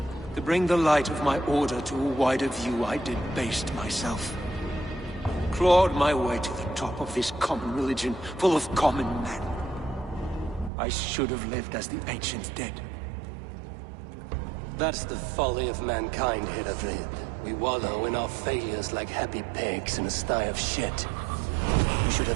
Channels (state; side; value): drops out; left; at 10.7 s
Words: To bring the light of my order to a wider view, I debased myself. Clawed my way to the top of this common religion, full of common men. I should have lived as the ancient dead. That's the folly of mankind, Hedavrid. We wallow in our failures like happy pigs in a sty of shit. You should